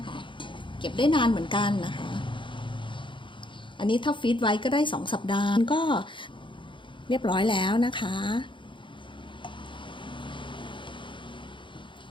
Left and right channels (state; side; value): late; right; 0.24 ms